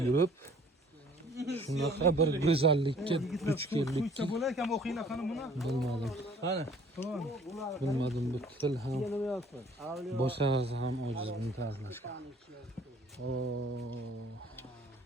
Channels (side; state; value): both; normal; correlation 0.55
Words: yurib, shunaqa bir go'zallikka duch keldikki, bo'lar ekan o'qinglar qani buni. bilmadim. Qani? Bilmadim, bu til ham boshqa narsa ham ojiz buni ta'riflashga.